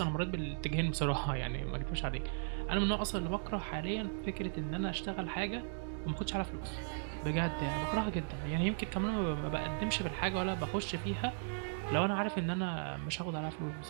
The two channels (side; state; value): left; silent; digital silence